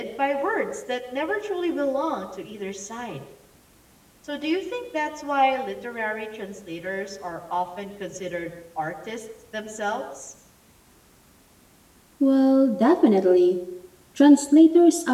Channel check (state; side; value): identical; both; correlation 1.00